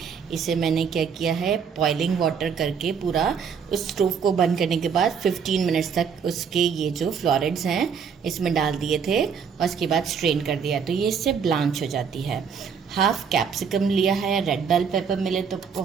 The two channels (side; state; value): left; quieter; 6.6 dB